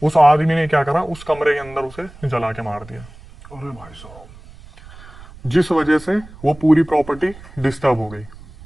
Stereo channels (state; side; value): noise; right; rumble, 20 dB below the sound